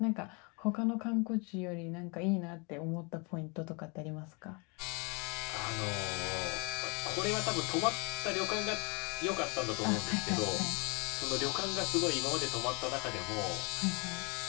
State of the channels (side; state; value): right; quieter; 31.9 dB